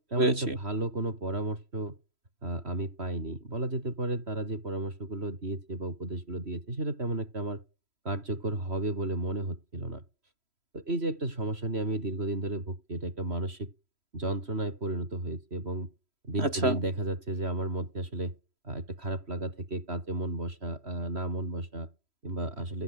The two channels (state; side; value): late; left; 3.1 ms